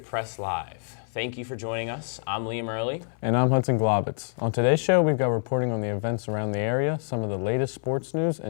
Press Live. Thank you for joining us. I'm Liam Early. And I'm Hudson Globitz. On today's show, we've got reporting on the events around the area, some of the latest sports news,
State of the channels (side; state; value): right; silent; 59 dB below the other